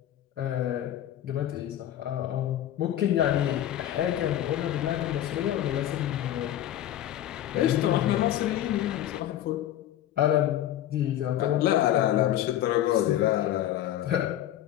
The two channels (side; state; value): right; quieter; 12.2 dB